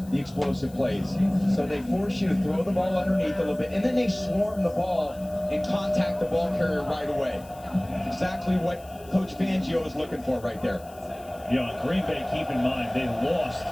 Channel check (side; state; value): left; noise; hiss, 24 dB below the sound